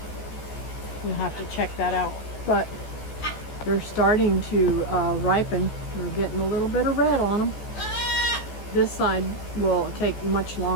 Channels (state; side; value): late; right; 14 ms